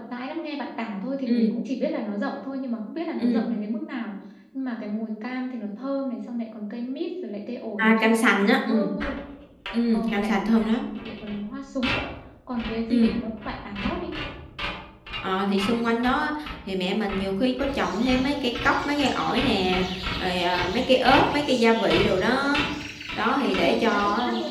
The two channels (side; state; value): both; identical; correlation 1.00